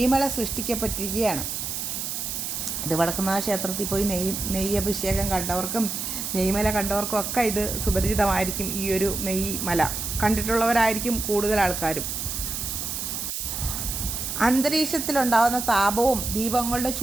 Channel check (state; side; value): noise; right; hiss, 4 dB below the sound